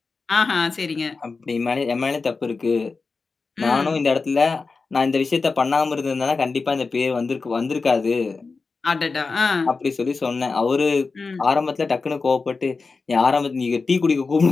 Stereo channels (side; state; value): right; quieter; 4.3 dB